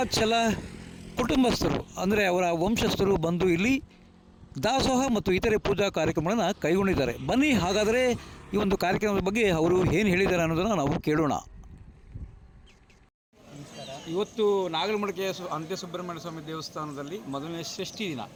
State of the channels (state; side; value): identical; both; correlation 1.00